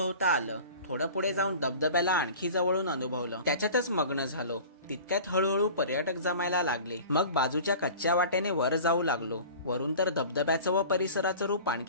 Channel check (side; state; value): both; inverted; correlation -0.40